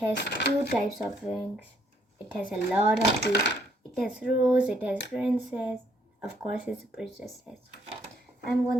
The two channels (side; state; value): both; normal; correlation 0.68